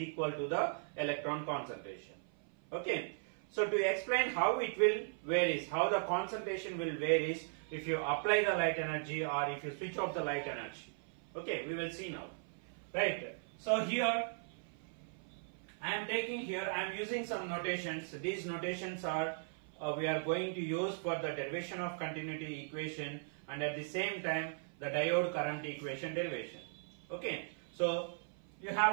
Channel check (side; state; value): left; silent; 52 dB below the other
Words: to the electron concentration. Okay, so to explain how it will varies, how the concentration will varies if you apply the light energy or if you switch off the light energy. Okay, we will see now. Right, so here I am using some notations. These notations are we are going to use for the derivation of continuity equation and at the same time the diode current equation derivation. Okay, so you